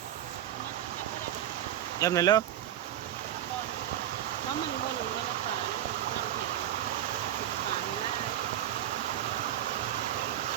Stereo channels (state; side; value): quieter; left; 11.7 dB